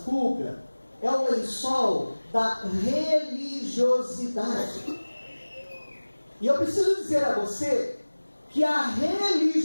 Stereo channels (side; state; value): both; inverted; correlation -1.00